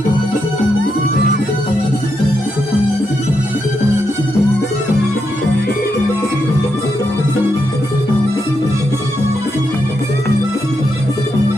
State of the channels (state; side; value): normal; both; correlation 0.82